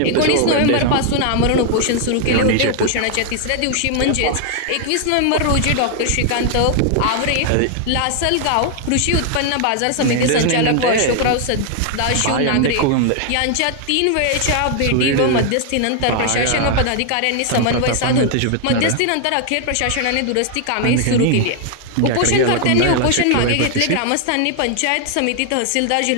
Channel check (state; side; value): different; both; correlation 0.00